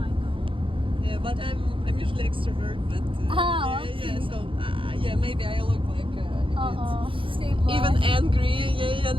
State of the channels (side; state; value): left; late; 0.25 ms